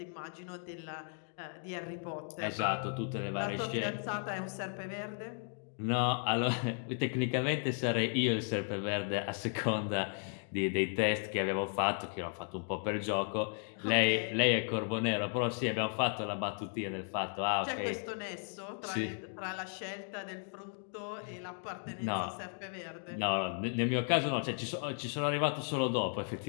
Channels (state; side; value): silent; right; 54 dB below the other